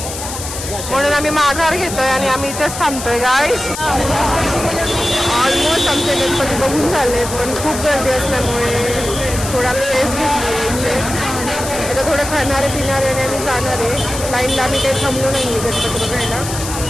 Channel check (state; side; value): noise; left; hiss, 8 dB below the sound